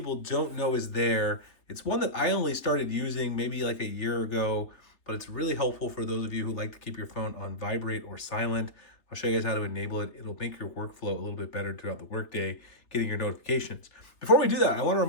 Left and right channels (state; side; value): late; right; 3.2 ms